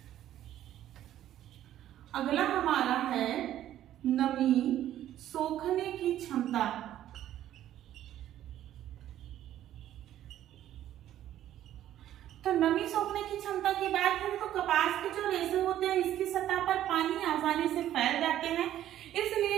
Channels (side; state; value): left; quieter; 12.2 dB